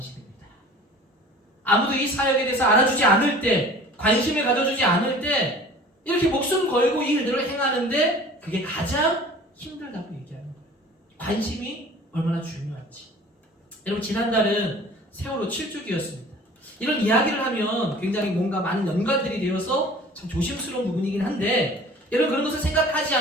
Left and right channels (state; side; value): normal; both; correlation 0.45